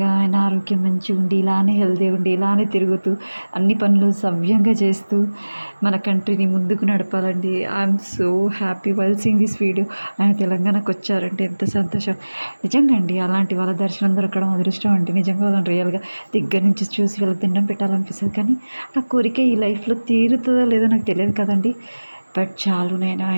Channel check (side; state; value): both; inverted; correlation -1.00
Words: ఆయన ఆరోగ్యం మంచిగా ఉండి, ఇలానే హెల్తీ ఉండి, ఇలానే తిరుగుతూ అన్ని పనులు సవ్యంగా చేస్తూ మన కంట్రీని ముందుకు నడపాలండి. I'm so happy while seeing this video. ఆయన తెలంగాణకు వచ్చారంటే ఎంత సంతోషం. నిజంగా అండి, అలాంటి వాళ్ళ దర్శనం దొరకడం అదృష్టం అండి. నిజంగా వాళ్ళని రియల్గా దగ్గర నుంచి చూసి వాళ్ళకి దండం పెట్టాలనిపిస్తుంది. కానీ ఆ కోరిక ఈ లైఫ్లో తీరుతుందో లేదో నాకు తెలియదు కదండి. బట్ చాలు, నేను